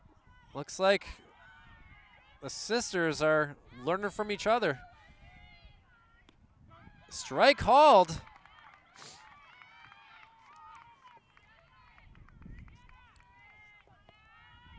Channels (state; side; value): identical; both; correlation 1.00